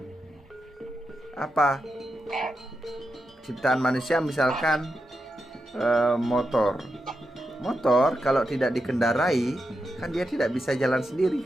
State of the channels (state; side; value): normal; both; correlation 0.87